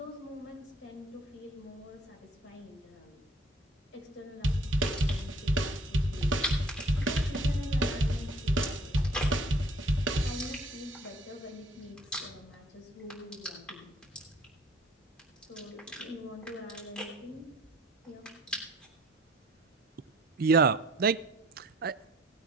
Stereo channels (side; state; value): both; normal; correlation 0.56